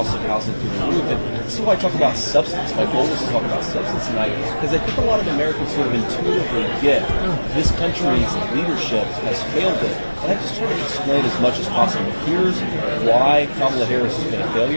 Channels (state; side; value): inverted; both; correlation -1.00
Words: of housing through the roof. And this is why I talk about substance. My goal is to talk about substance tonight, because I think a lot of Americans sort of intuitively get this country's leadership has failed it. And I just try to explain as much as possible. Here's why Kamala Harris has been a